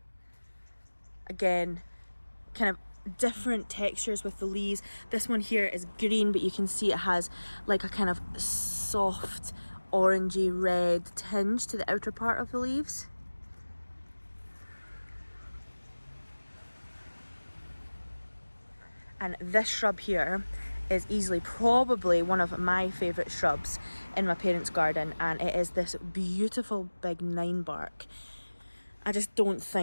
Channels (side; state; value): both; inverted; correlation -1.00